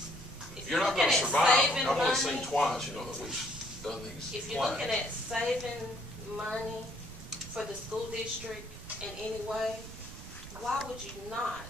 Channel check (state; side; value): noise; right; rumble, 13 dB below the sound